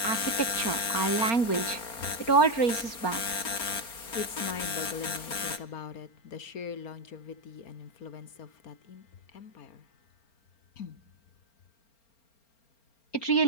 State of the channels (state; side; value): late; right; 4.3 ms